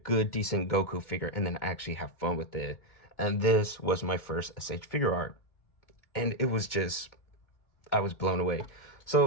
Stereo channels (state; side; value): late; right; 2.2 ms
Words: decent Goku figure and then actually have fun with it. And this was my first S.H.Figuart. And it was just, I was blown away.